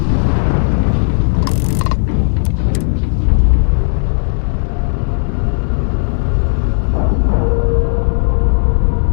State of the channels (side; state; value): right; silent; digital silence